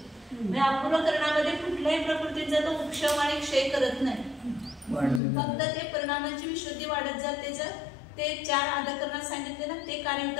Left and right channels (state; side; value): drops out; right; at 5.2 s